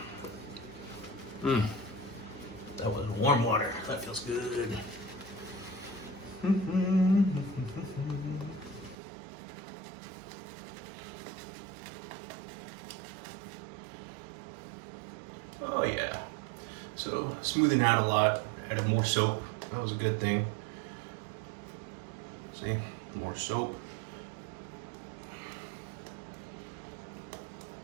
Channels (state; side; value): drops out; left; at 9.0 s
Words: That was warm water, that feels good. Oh yeah, so smoothing out a lot, added more soap, that was a good thing. See, more soap.